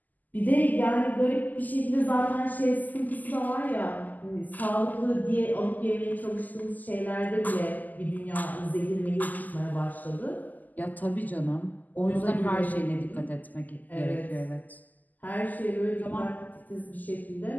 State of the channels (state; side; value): late; right; 0.082 ms